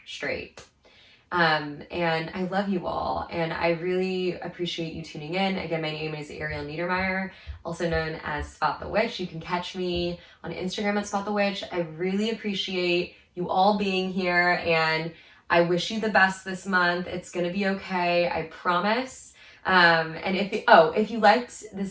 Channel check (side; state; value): both; identical; correlation 1.00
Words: straight. And I love you all. And I really appreciate you tuning in. Again, my name is Ariel Neidermeier, also known as Spot the Witch. You can catch me on Instagram at Spot the Witch. I really appreciate you all being here. And I wish you the best this month. It's gonna be okay, I promise. And if you liked